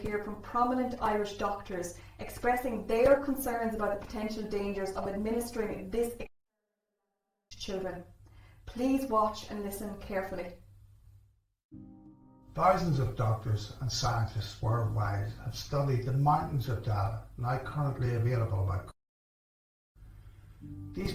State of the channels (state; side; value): identical; both; correlation 1.00